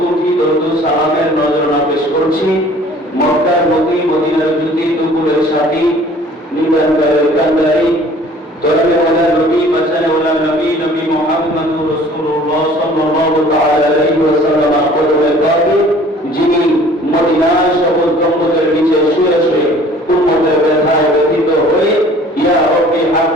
কোটি দরুদ সালামের নজরানা পেশ করছি মক্কার মতি, মদিনার জ্যোতি, দুপুরের সাথী, নিদানকারের কান্দারি, তরবে ওয়ালা নবী, বাঁচানে ওয়ালা নবী, নবী মুহাম্মদুর রাসূলুল্লাহ সাল্লাল্লাহু তাআলা আলাইহি ওয়াসাল্লাম কদমে পাকে, যিনি মদিনার সকল গম্বুজের নিচে শুয়ে শুয়ে উম্মতের ব্যথায় ব্যথিত হয়ে ইয়া রব্বি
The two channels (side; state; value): both; normal; correlation 0.51